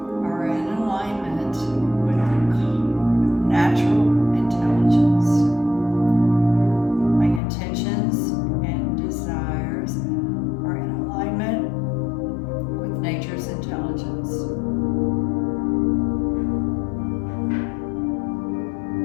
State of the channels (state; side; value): drops out; right; at 7.4 s